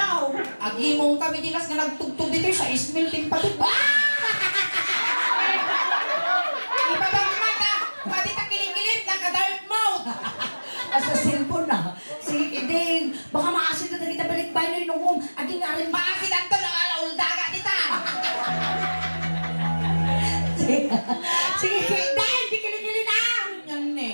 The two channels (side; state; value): both; inverted; correlation -1.00